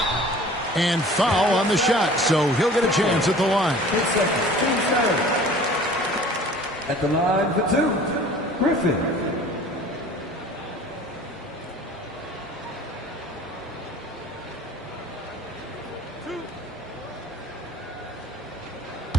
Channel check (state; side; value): normal; both; correlation 0.46